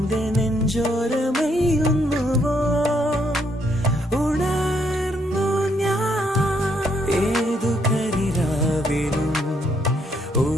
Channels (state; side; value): normal; both; correlation 0.72